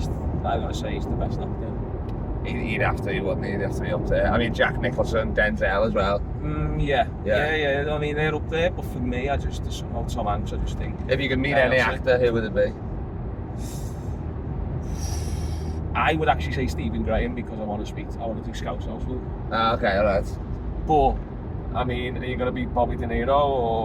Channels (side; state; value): both; identical; correlation 1.00